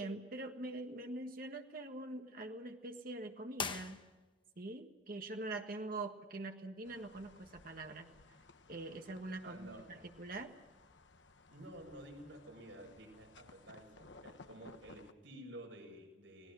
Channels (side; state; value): both; normal; correlation 0.34